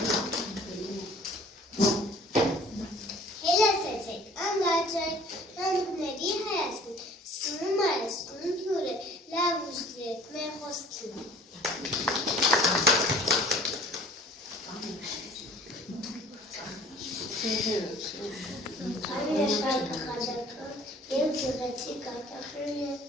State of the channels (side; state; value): both; normal; correlation 0.51